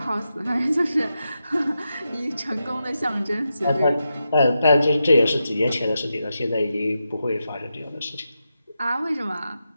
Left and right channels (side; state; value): both; inverted; correlation -0.87